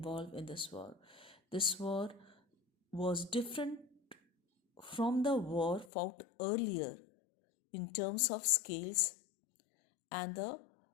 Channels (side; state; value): right; drops out; at 5.9 s